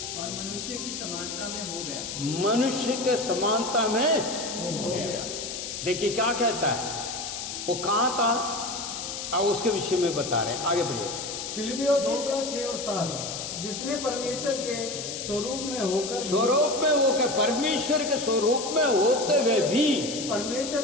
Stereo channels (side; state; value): left; noise; hiss, 6 dB below the sound